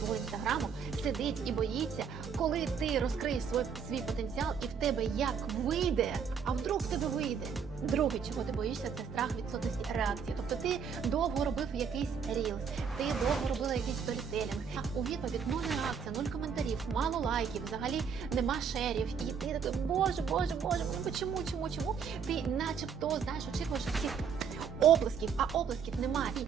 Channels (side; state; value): left; quieter; 6.7 dB